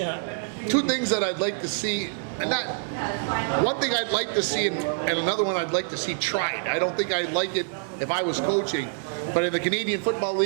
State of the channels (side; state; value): left; silent; 56 dB below the other